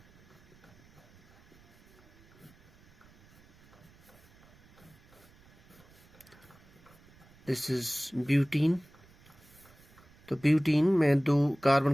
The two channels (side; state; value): right; noise; rumble, 27 dB below the sound